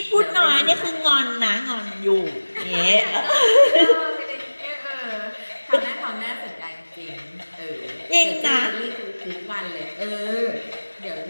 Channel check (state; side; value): inverted; both; correlation -1.00